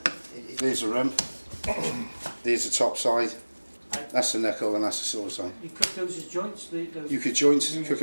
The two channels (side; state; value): both; inverted; correlation -1.00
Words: There's the rump. There's the top side. That's the knuckle and that's the sore side. You cook those as joints? Those You could cook